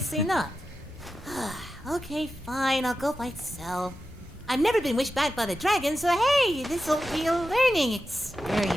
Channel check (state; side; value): normal; both; correlation 0.91